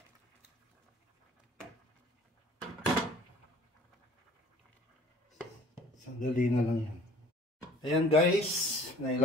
Sandali na lang yan. Ayan guys,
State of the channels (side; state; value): both; normal; correlation 0.51